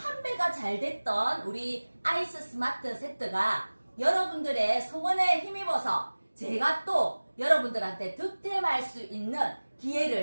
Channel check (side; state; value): both; inverted; correlation -1.00